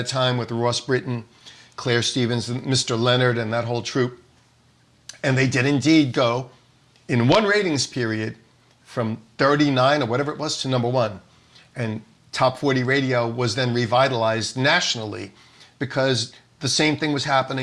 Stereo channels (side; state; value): both; identical; correlation 1.00